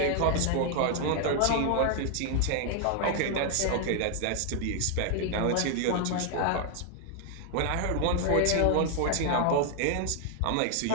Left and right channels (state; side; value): different; both; correlation 0.00